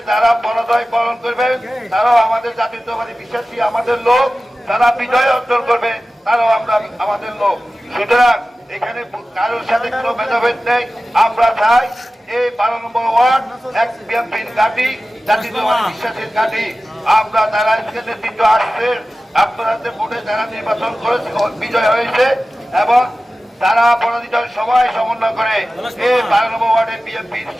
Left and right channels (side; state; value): both; normal; correlation 0.95